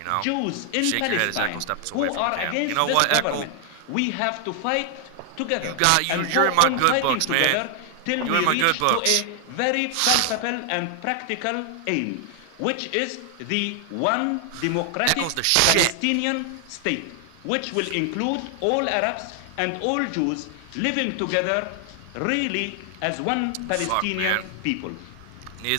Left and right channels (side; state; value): both; different; correlation 0.00